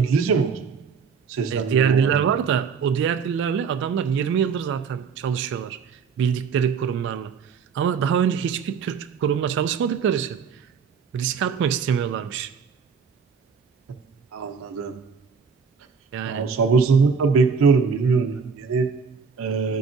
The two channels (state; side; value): quieter; left; 5.9 dB